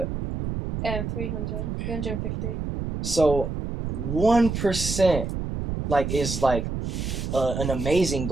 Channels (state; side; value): noise; right; rumble, 4 dB below the sound